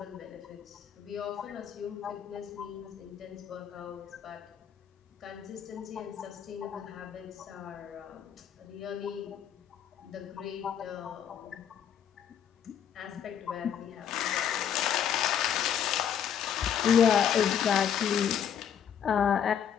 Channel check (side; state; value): right; quieter; 8.8 dB